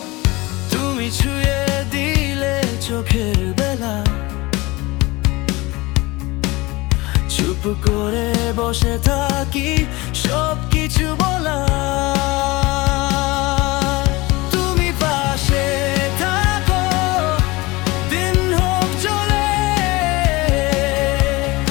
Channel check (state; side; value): quieter; right; 22.3 dB